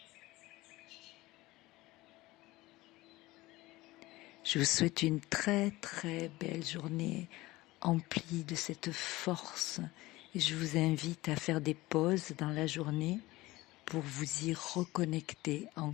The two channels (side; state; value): right; quieter; 19.3 dB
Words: Je vous souhaite une très très belle journée emplie de cette force et je vous invite à faire des pauses dans la journée pour vous y reconnecter